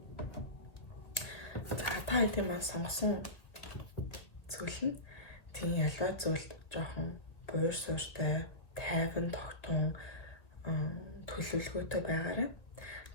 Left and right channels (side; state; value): right; late; 2.0 ms